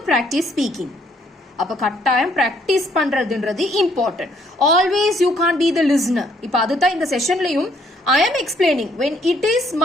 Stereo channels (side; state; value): both; normal; correlation 0.67